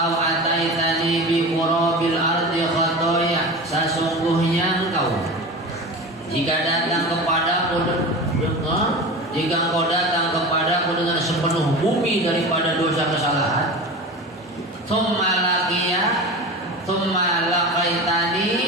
ataitani bi qurabil ardi khatoya, sesungguhnya engkau jika datang kepadaku, jika engkau datang kepadaku dengan sepenuh bumi daripada dosa kesalahan, tsumma laqaitani,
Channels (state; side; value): normal; both; correlation 0.30